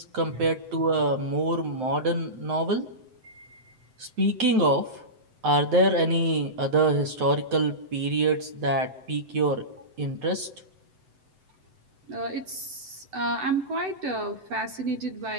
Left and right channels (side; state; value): left; late; 7.9 ms